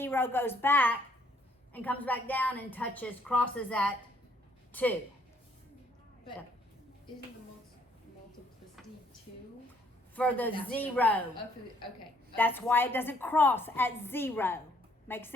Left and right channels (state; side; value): normal; both; correlation 0.66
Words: goes back, and comes back down and touches, crosses at 2. But isn't the multiplicity 2? For the That's 0. Oh, for the, okay. That's why it doesn't cross at 0. Make